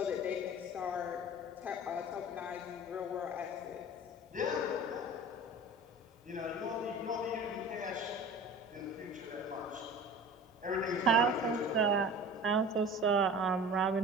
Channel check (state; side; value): normal; both; correlation 0.39